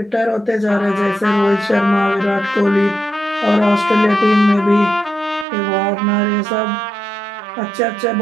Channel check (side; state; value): left; drops out; at 5.5 s